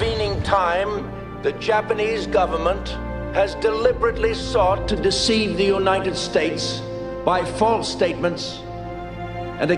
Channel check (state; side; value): identical; both; correlation 1.00